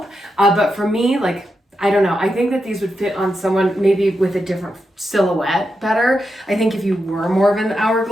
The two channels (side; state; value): both; normal; correlation 0.86